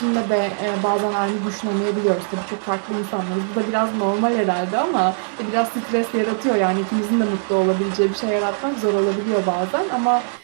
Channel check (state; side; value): silent; left; 65 dB below the other